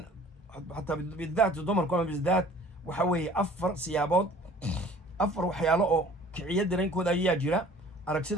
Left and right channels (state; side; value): normal; both; correlation 0.49